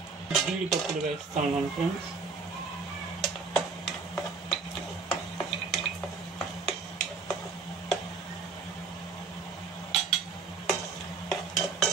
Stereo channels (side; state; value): left; quieter; 4.6 dB